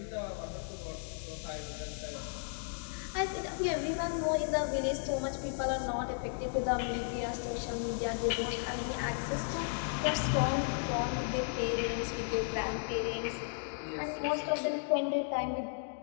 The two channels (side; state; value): right; silent; digital silence